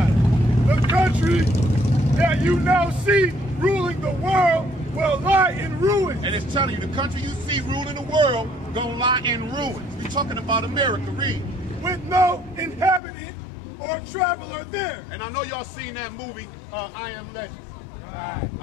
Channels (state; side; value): drops out; right; at 13.0 s